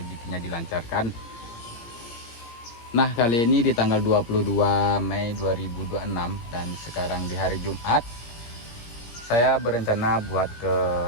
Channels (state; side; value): late; right; 17 ms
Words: dilancarkan. Nah, kali ini di tanggal 22 Mei 2026 dan sekarang di hari Jumat, saya berencana buat ke